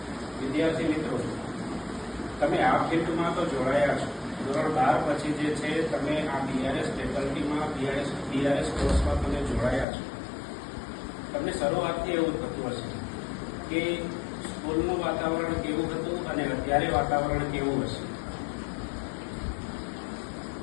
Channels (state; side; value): drops out; right; at 9.9 s